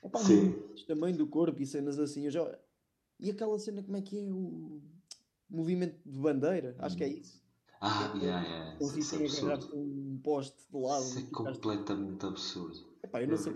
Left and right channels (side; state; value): both; identical; correlation 1.00